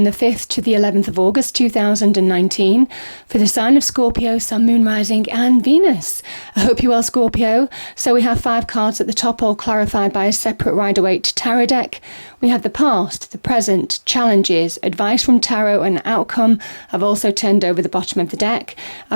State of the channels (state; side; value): inverted; both; correlation -1.00